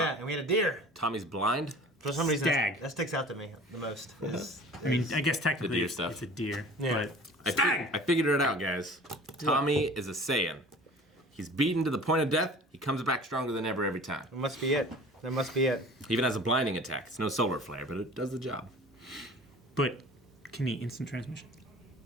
and we had a deer. Tommy's blind. For some reason, Stag. that sticks out to me the most. I mean, I guess technically deer it's stuff. a deer. Yeah. But stag! I figured it out, guys. Tommy is a Saiyan. He's beaten to the point of death. He comes back stronger than ever every time. That must be it. That must be it. He even has a blinding attack. It's no solar flare, but it does the job. But can he instant transmission?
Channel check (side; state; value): both; normal; correlation 0.44